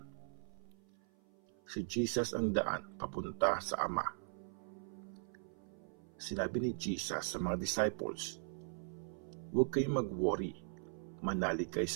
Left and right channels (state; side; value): silent; left; 51 dB below the other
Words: Si Jesus ang daan papunta sa Ama. Sinabi ni Jesus sa mga disciples, "Huwag kayong mag-worry, manalig kayo